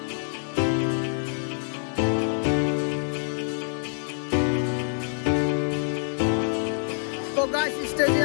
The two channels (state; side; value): silent; right; digital silence